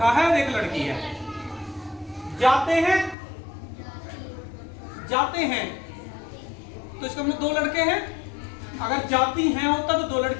है और एक लड़की है। जाते हैं, जाते हैं, तो इसका मतलब 2 लड़के हैं। अगर जाती हैं होता तो 2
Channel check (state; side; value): drops out; right; at 3.2 s